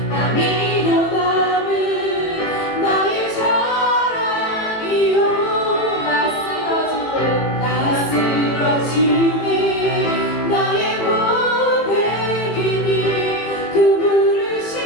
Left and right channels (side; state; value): right; late; 18 ms